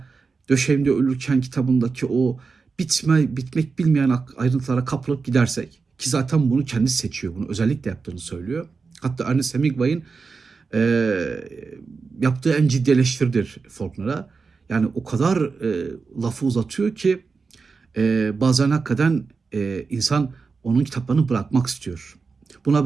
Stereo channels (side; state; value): left; quieter; 4.7 dB